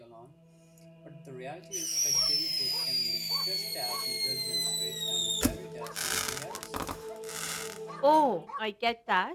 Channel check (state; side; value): identical; both; correlation 1.00